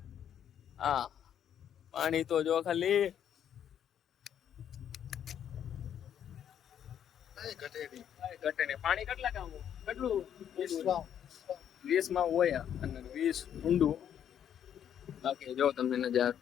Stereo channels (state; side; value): quieter; right; 9.4 dB